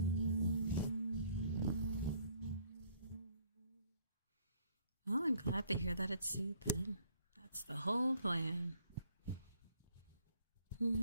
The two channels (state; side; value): inverted; both; correlation -0.63